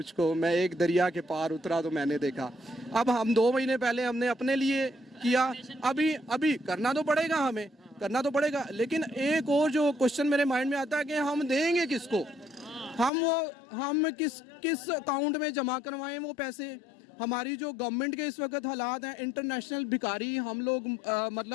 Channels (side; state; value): right; drops out; at 13.1 s